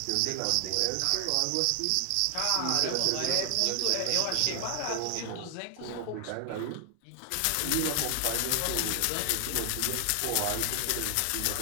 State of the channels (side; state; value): both; different; correlation 0.00